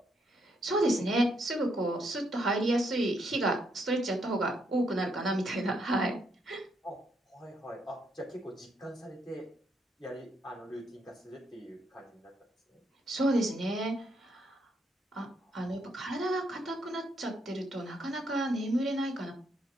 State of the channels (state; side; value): normal; both; correlation 0.75